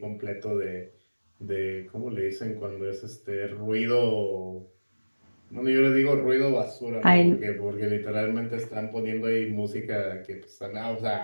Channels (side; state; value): both; inverted; correlation -1.00